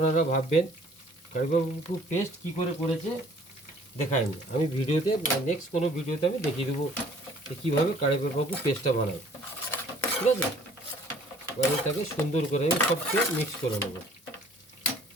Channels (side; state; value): both; normal; correlation 0.55